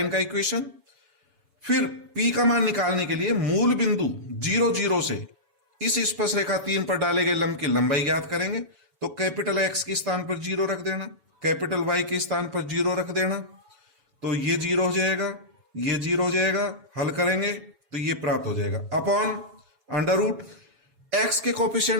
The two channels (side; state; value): left; late; 7.1 ms